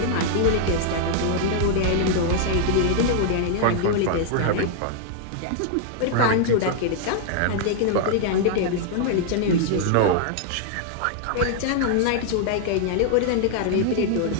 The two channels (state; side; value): different; both; correlation -0.01